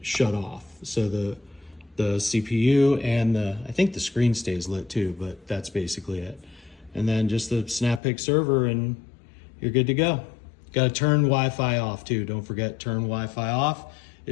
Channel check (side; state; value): right; drops out; at 8.0 s